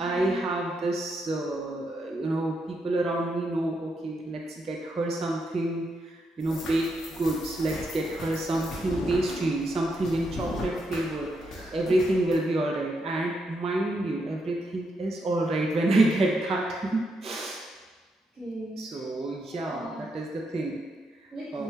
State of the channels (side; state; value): both; normal; correlation 0.80